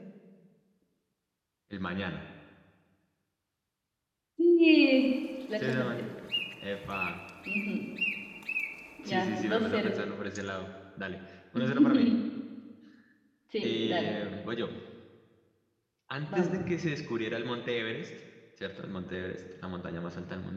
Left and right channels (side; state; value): both; identical; correlation 1.00